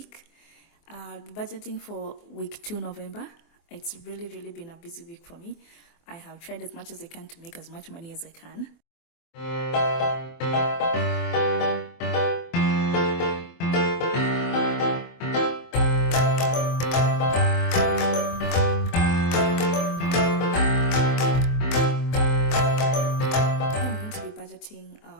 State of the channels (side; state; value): right; late; 24 ms